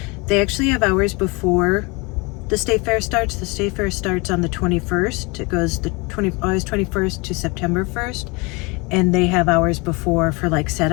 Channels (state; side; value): quieter; right; 27.5 dB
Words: they actually have hours before the state fair starts. The state fair starts on the 21st. It goes August 21st to September 1st. And they have hours before for like